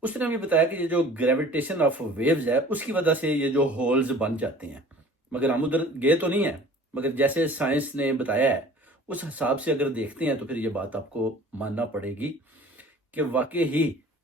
اس نے بھی بتایا کہ یہ جو گریویٹیشن آف ویوز ہے اس کی وجہ سے یہ جو ہولز بن جاتے ہیں، مگر ہم ادھر گئے تو نہیں ہیں، مگر جیسے سائنس نے بتایا ہے اس حساب سے اگر دیکھتے ہیں تو پھر یہ بات آپ کو ماننا پڑے گی کہ واقعی ہی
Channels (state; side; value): normal; both; correlation 0.46